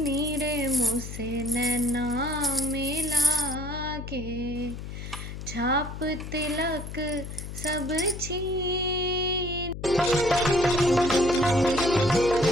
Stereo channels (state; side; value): noise; left; hum, 9 dB below the sound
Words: नीरे मुझसे नैना मिला के छाप तिलक सब छीन।